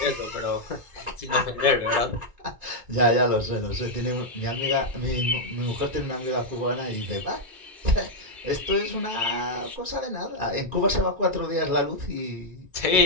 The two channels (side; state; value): left; late; 2.2 ms